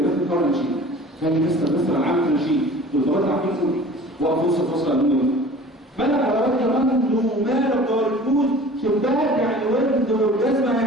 القران نشيد. كان مستر انا عامل نشيد والطبقات عارفين فوق وقف وسط فصل النوم ملك حضرات كمان له مالك دور الفوز شباك يعني ورد والجزمه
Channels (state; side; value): normal; both; correlation 0.44